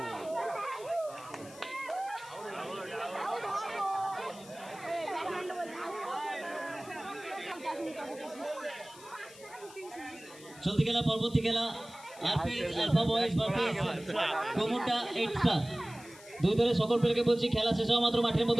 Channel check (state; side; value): noise; left; hiss, 20 dB below the sound